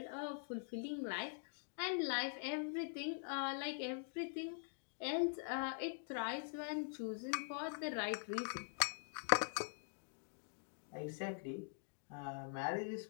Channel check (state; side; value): silent; right; digital silence